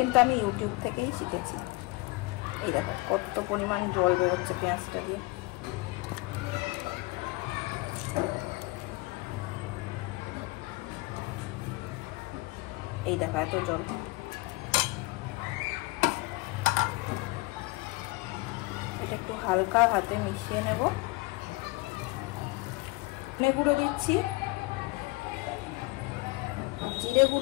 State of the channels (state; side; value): quieter; right; 23.3 dB